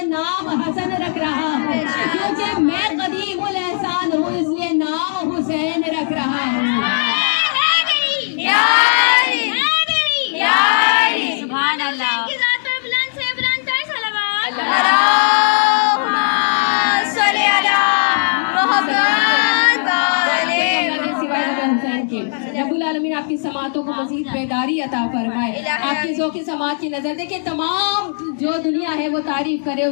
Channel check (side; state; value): right; silent; digital silence